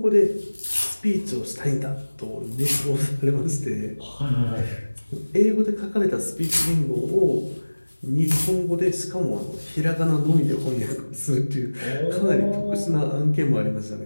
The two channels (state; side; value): inverted; both; correlation -1.00